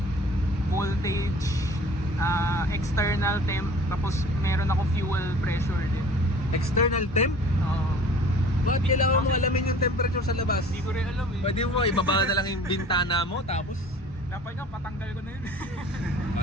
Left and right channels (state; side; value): normal; both; correlation 0.47